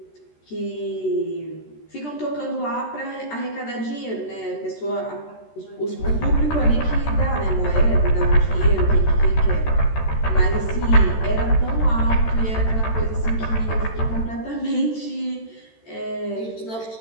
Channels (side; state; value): right; late; 13 ms